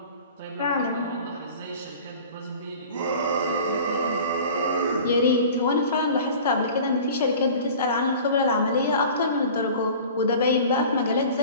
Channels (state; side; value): inverted; both; correlation -0.42